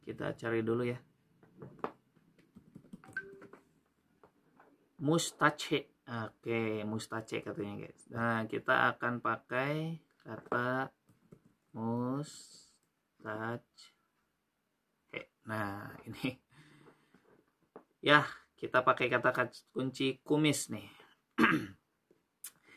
Kita cari dulu ya. Mustache. Oke, mustache katanya guys. Nah, kita akan pakai kata mustache. Nah, ini ya, kita pakai kata kunci kumis nih.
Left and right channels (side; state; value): both; identical; correlation 1.00